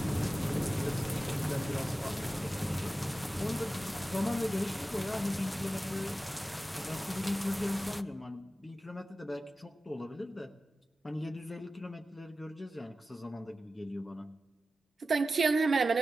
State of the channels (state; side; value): normal; both; correlation 0.94